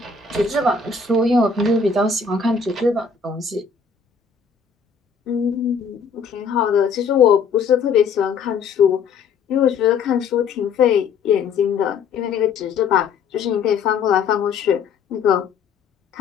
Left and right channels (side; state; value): right; quieter; 5.7 dB